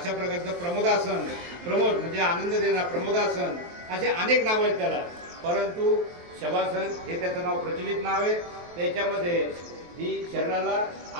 प्रकारचं प्रमोदासन, प्रमोद म्हणजे आनंद देणारं प्रमोदासन, असे अनेक नावं आहेत त्याला। परंतु शवासन हे त्याचं नाव प्रचलित नाव आहे। त्याच्यामध्ये ही शरीराला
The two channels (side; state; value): left; late; 23 ms